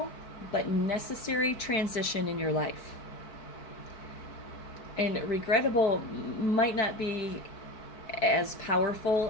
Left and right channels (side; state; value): right; late; 4.6 ms